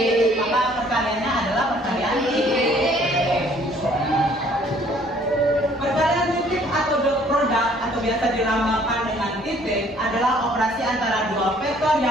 maka perkaliannya adalah perkalian titik. Perkalian titik atau dot product atau biasa dilambangkan dengan titik adalah operasi antara dua vektor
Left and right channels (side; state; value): both; normal; correlation 0.59